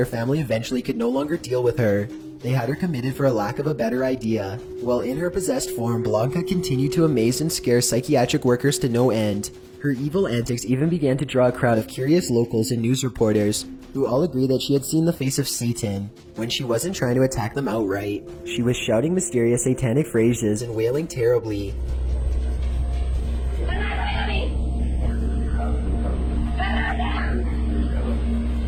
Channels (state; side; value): identical; both; correlation 1.00